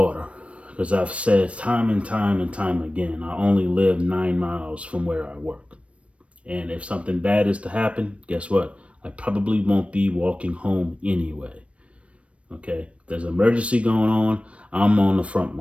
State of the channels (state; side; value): late; left; 0.062 ms